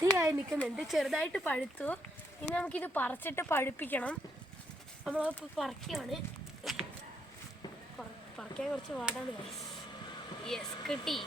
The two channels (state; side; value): normal; both; correlation 0.74